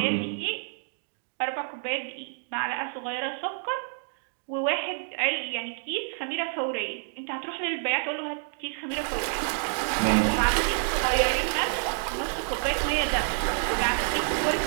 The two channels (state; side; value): silent; left; digital silence